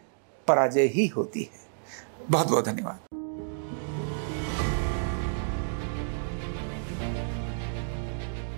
पराजय ही होती है। बहुत बहुत धन्यवाद।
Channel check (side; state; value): left; silent; digital silence